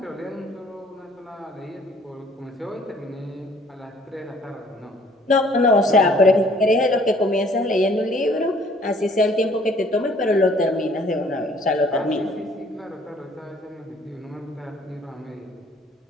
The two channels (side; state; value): both; normal; correlation 0.58